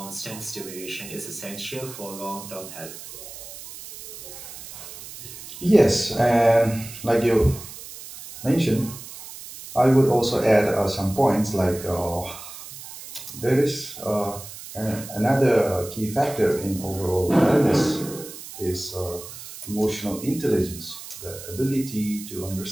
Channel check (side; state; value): right; noise; hiss, 13 dB below the sound